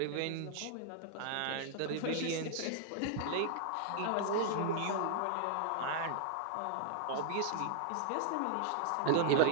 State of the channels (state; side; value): different; both; correlation -0.01